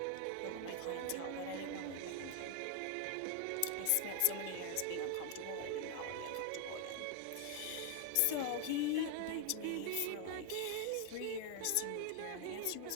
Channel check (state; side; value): different; both; correlation 0.00